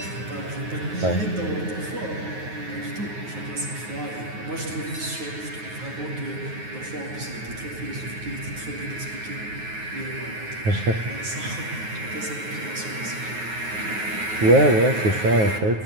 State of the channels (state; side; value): late; left; 9.5 ms